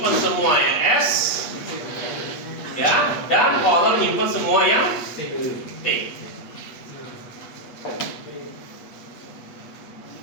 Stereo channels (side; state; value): right; late; 8.3 ms